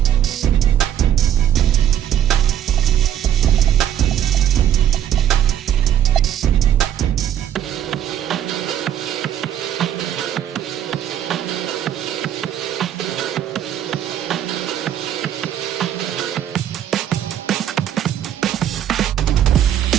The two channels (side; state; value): left; quieter; 10.4 dB